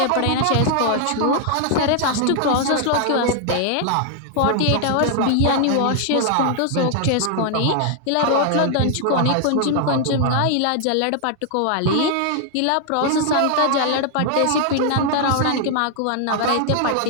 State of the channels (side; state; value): both; different; correlation 0.00